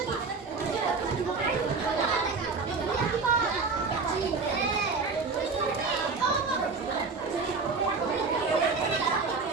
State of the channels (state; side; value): quieter; left; 4.5 dB